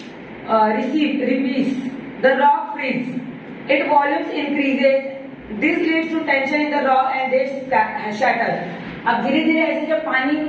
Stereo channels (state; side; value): identical; both; correlation 1.00